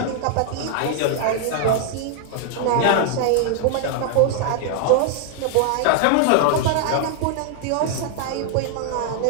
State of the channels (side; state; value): both; different; correlation 0.00